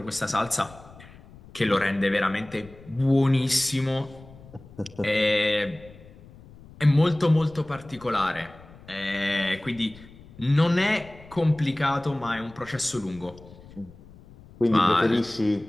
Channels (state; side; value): noise; left; rumble, 21 dB below the sound